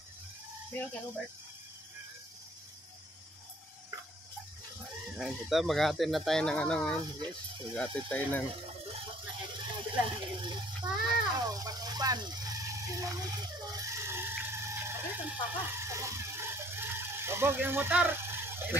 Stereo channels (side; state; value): both; normal; correlation 0.57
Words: Meron ka Robert. Ayan, ito, maghahatid na tayo ng ano ngayon, guys. Maghahatid tayo ng... Pa. Pag-upan. Bobog yung motor.